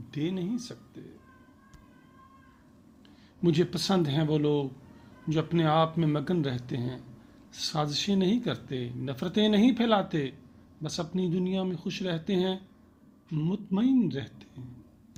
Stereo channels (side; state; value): both; identical; correlation 1.00